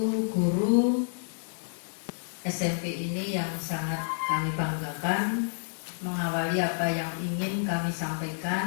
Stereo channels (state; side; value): silent; right; 58 dB below the other